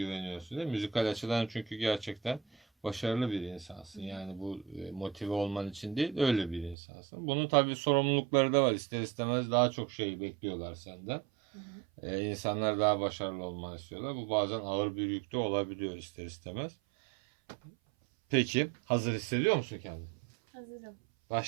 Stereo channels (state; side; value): drops out; left; at 6.8 s